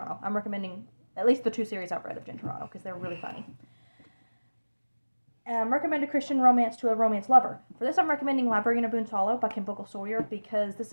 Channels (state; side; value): inverted; both; correlation -1.00